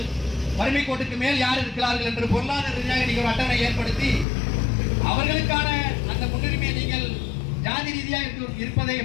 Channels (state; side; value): drops out; right; at 4.2 s